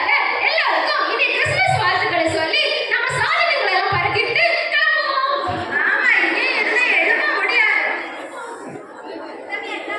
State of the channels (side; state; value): both; identical; correlation 1.00